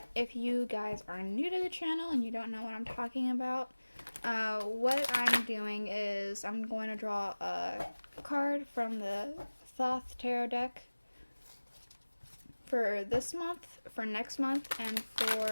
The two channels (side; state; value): both; inverted; correlation -1.00